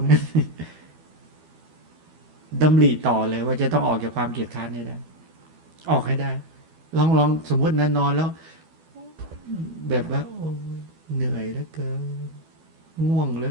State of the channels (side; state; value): left; late; 12 ms